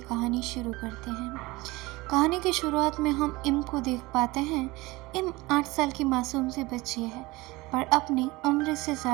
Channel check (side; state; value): left; quieter; 21.6 dB